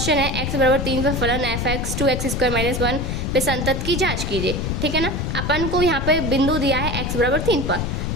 है, x बराबर 3 पर फलन f x 2x square minus 1 पे संतत की जांच कीजिए। ठीक है ना, अपन को यहाँ पे बिंदु दिया है x बराबर 3 पर,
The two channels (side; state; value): left; noise; rumble, 2 dB below the sound